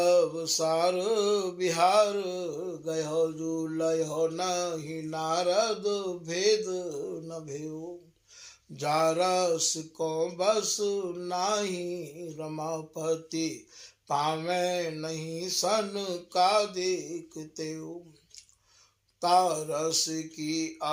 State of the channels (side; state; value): both; identical; correlation 1.00